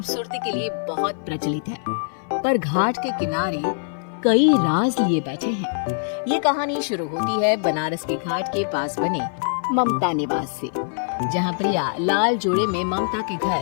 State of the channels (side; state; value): right; silent; 56 dB below the other